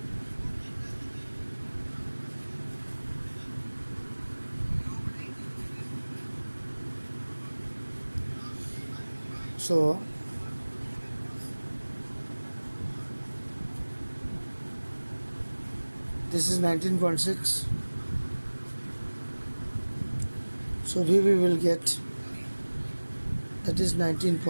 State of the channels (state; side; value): inverted; both; correlation -1.00